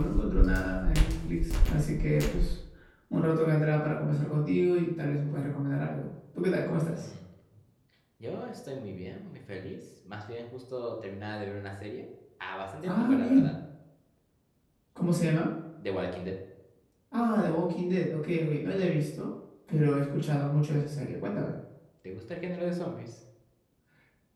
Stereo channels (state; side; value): identical; both; correlation 1.00